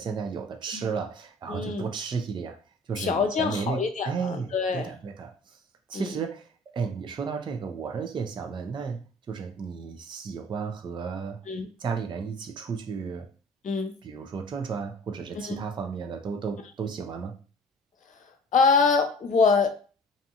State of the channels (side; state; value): both; normal; correlation 0.46